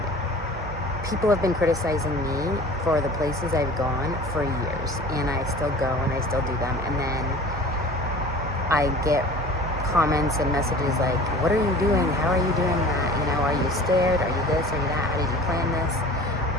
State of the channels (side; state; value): both; normal; correlation 0.42